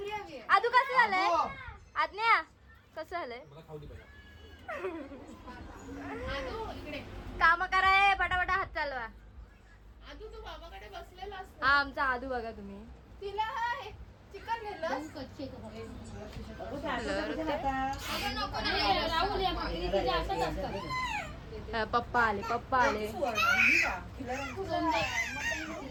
आदू कसं झालंय? आज्ञा कसं झालंय? काम कराय पटापटा हात चालवा. आदू तू बाबाकडे बसलेला असतो. हा आमचा आदू बघा तुम्ही. तिला चिकन नेलंस? पप्पा आले.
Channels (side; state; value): both; identical; correlation 1.00